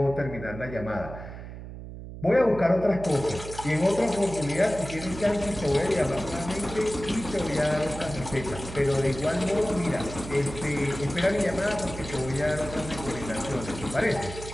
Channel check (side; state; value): right; noise; hum, 11 dB below the sound